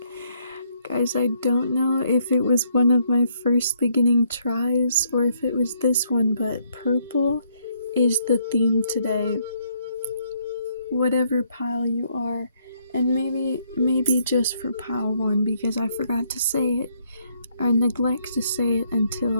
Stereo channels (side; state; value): both; inverted; correlation -0.71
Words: Guys, I don't know if it was one of my first beginning tries or if it was this one, but purple is the theme today. Whatever pile you are, and maybe just for pile 1, because I forgot to say it, or neglect to say it